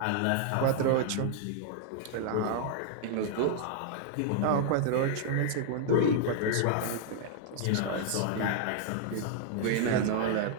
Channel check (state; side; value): different; both; correlation -0.01